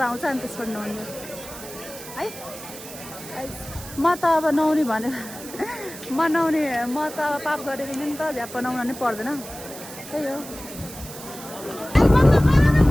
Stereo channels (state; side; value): noise; right; hiss, 14 dB below the sound